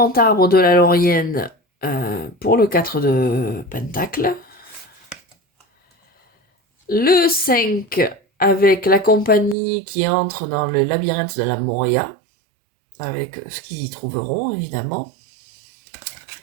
arbre de la Laurienne pour le 4 de pentacle. Le 5 avec la compagnie qui entre dans le labyrinthe de la Moria, avec ce qu'ils y trouveront, évidemment.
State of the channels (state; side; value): drops out; left; at 9.6 s